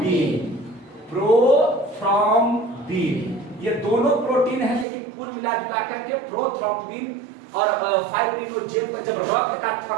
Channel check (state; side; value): drops out; left; at 4.9 s